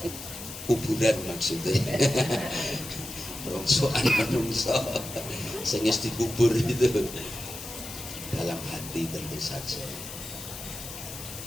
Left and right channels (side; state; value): left; noise; hiss, 11 dB below the sound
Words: kuburan maksudnya. Rongsokan menungso sing wis dikubur itu dalam hati tentu saja.